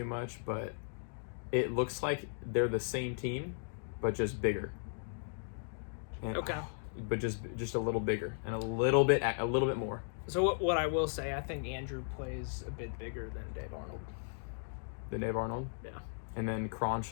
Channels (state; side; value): silent; right; digital silence